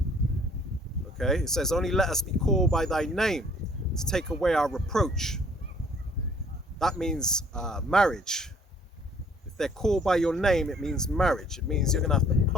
Okay, it says, only let us be called by thy name to take away our reproach. That means marriage. If they're called by your name, it means marriage. It means you're gonna have to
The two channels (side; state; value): both; normal; correlation 0.58